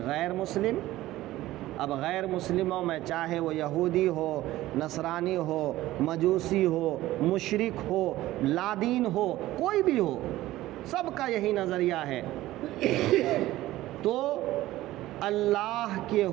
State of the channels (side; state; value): left; quieter; 16.1 dB